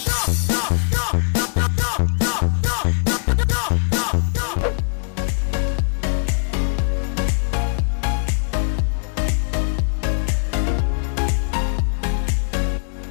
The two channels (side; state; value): right; silent; digital silence